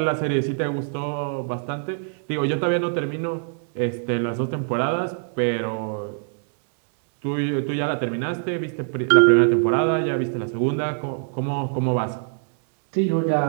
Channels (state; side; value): silent; left; digital silence